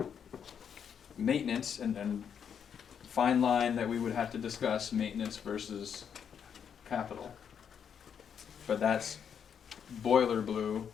Maintenance, and fine line that we would have to discuss, maintenance versus capital. But that's boiler blue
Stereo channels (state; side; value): quieter; right; 7.8 dB